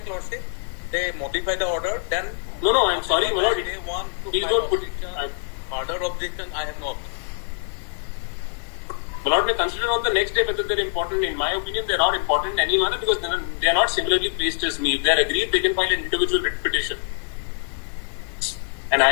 lordship, they modify the order, then. No, I'm sorry, my lord. They want to Please file don't put. further objection, I have no objection. My lord may consider on the next day whether they're important. In my opinion, they're not important in any manner because they're not similarly placed as me. If they're agreed, they can file an individual writ petition. And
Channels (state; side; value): silent; right; digital silence